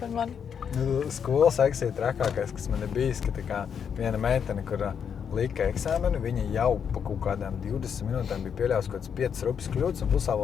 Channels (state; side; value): quieter; right; 7.4 dB